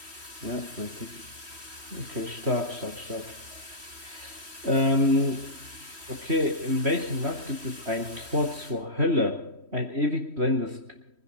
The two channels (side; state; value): left; late; 3.1 ms